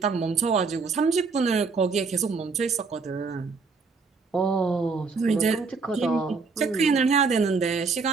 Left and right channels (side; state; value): left; quieter; 4.6 dB